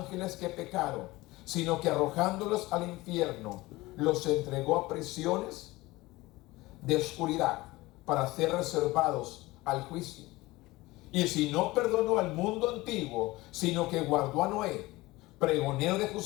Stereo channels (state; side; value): quieter; right; 20.1 dB